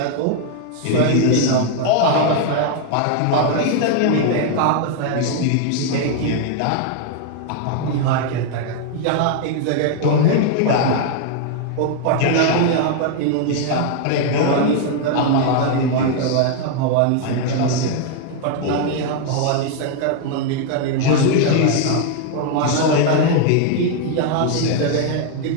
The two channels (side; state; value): both; different; correlation 0.00